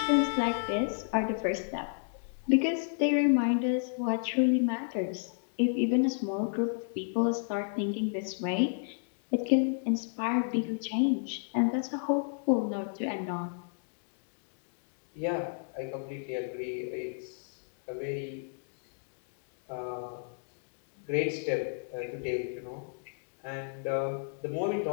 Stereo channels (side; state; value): right; silent; digital silence